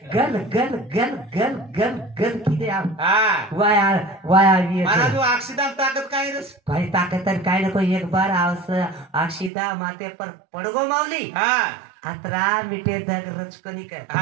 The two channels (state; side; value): drops out; left; at 9.5 s